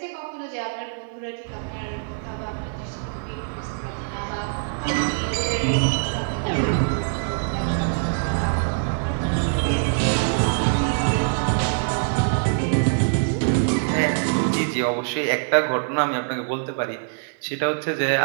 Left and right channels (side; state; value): left; silent; digital silence